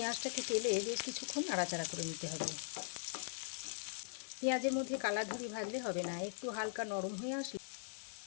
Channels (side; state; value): right; silent; 51 dB below the other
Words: তেলে বেশ কিছুক্ষণ নাড়াচাড়া করে নিতে হবে। পেঁয়াজের মধ্যে কালার ধরে ভাজলে হবে না, একটু হালকা নরম হয়ে আসলে